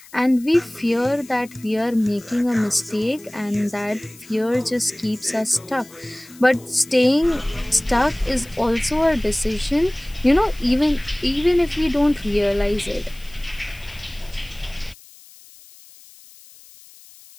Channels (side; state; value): left; noise; hiss, 23 dB below the sound